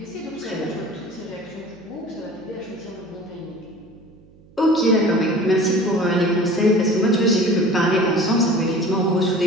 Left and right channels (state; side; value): noise; right; hum, 26 dB below the sound